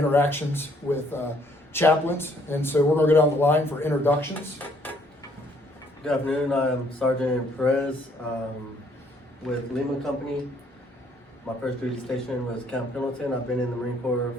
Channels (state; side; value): normal; both; correlation 0.65